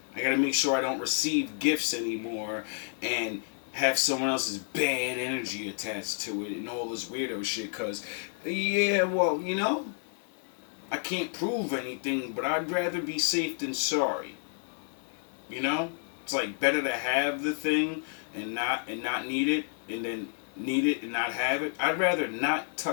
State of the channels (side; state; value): right; silent; 58 dB below the other